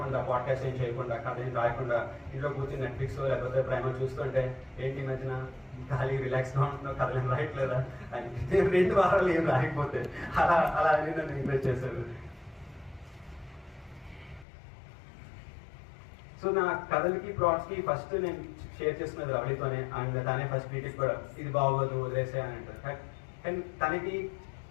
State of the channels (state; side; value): drops out; right; at 14.5 s